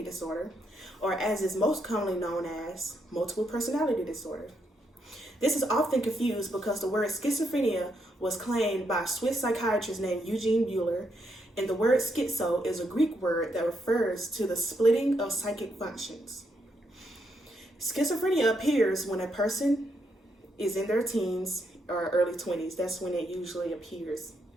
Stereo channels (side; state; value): both; normal; correlation 0.78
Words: disorder, or as is most commonly known as multiple personality disorder. This is often confused because the word schizophrenia was claimed by a Swiss psychiatrist named Eugene Buehler, and the word schizo is a Greek word that refers to the splitting of psychic functions. Schizophrenia appears when a person is in their teens or early 20s. That's when it usually appears.